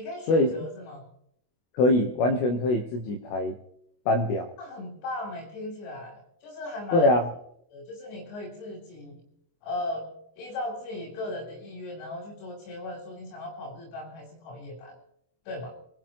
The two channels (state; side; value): late; right; 24 ms